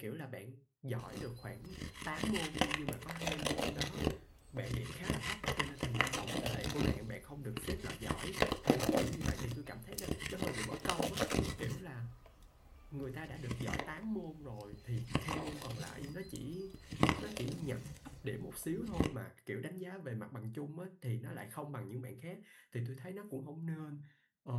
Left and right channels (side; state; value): both; identical; correlation 1.00